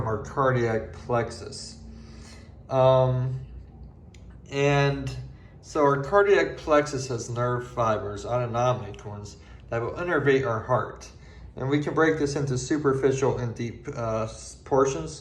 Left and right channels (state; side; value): identical; both; correlation 1.00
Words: our cardiac plexus. And so our cardiac plexus has nerve fibers, autonomic ones, that will innervate our heart. And we can break this into superficial and deep